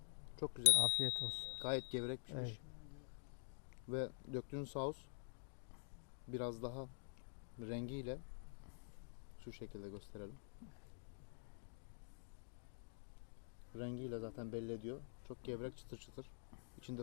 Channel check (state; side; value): silent; right; digital silence